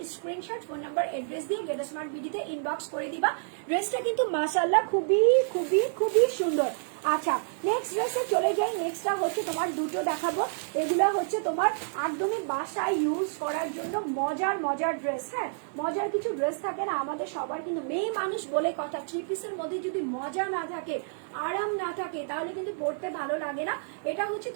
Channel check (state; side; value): silent; left; digital silence